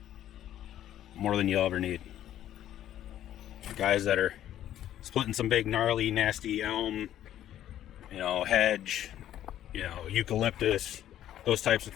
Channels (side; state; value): right; quieter; 11.8 dB